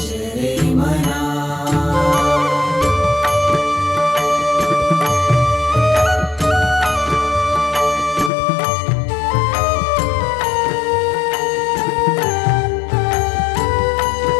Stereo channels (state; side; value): drops out; right; at 8.3 s